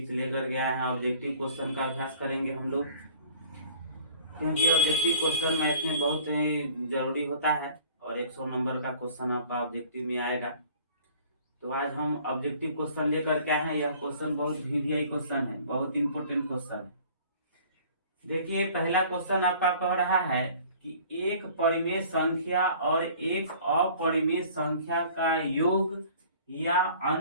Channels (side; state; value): both; inverted; correlation -0.51